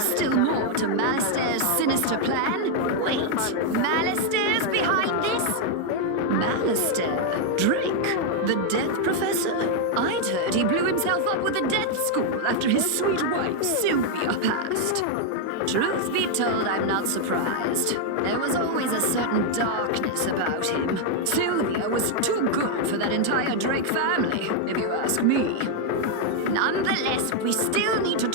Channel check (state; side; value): different; both; correlation 0.00